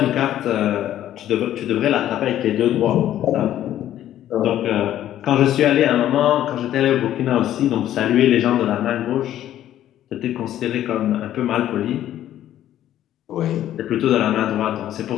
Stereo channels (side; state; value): right; quieter; 12.1 dB